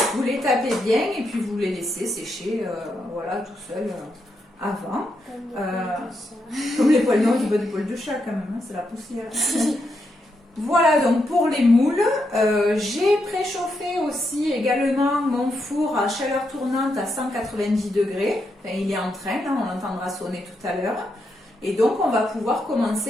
vous les tapez bien et puis vous les laissez sécher voilà, tout seul. Avant, comme les poils, non, du bas du poil de chat quand même, hein, c'est la poussière. Voilà donc pour les moules. J'ai préchauffé aussi également mon four à chaleur tournante à 190 degrés. Enfin, il est en train, hein, on l'entendra sonner tout à l'heure. Et donc on va pouvoir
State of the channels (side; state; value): both; normal; correlation 0.82